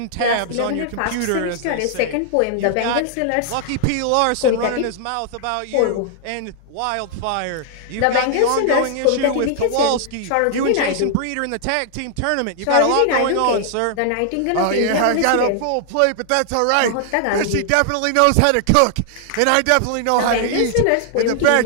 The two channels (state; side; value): different; both; correlation 0.00